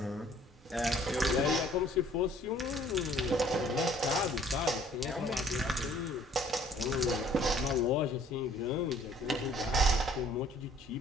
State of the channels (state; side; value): normal; both; correlation 0.56